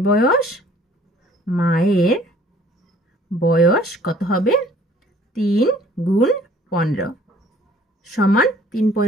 বয়স কত হবে? 3 গুণ 15 সমান 3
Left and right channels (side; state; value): both; normal; correlation 0.55